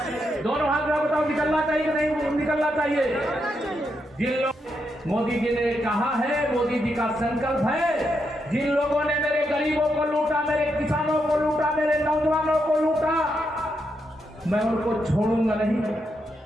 दोनों हाथ में बताओ, निकलना चाहिए कि नहीं निकलना चाहिए? जिन लोग मोदी जी ने कहा है, मोदी जी का संकल्प है, जिन लोगों ने मेरे गरीबों को लूटा, मेरे किसानों को लूटा, मेरे नौजवानों को लूटा, मैं उनको छोड़ूंगा नहीं।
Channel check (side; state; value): both; normal; correlation 0.82